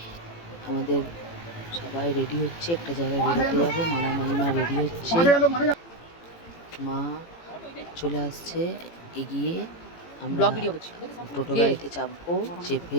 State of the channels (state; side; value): late; right; 18 ms